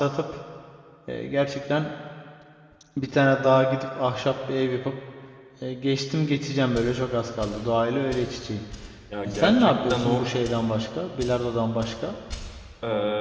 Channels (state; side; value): identical; both; correlation 1.00